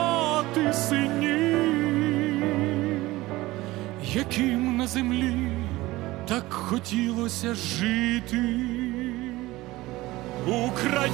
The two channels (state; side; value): quieter; left; 18.8 dB